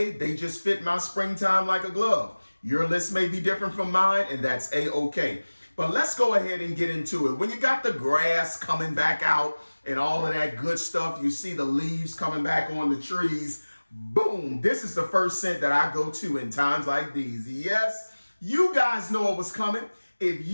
they just fit my springtime like a glove. Your list may be different from mine, and that's A-okay. But let's go ahead and get into it. When you got the grass coming back out and all of that good stuff, you see the leaves coming back on the trees, boom, this is the first scent that I go to in times like these. Yes, you guys know it was coming. If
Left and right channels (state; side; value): inverted; both; correlation -1.00